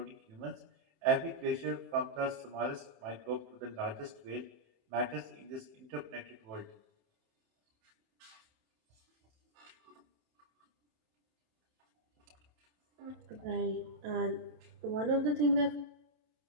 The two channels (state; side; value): late; left; 27 ms